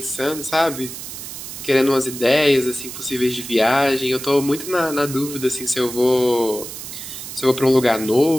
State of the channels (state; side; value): noise; right; hiss, 10 dB below the sound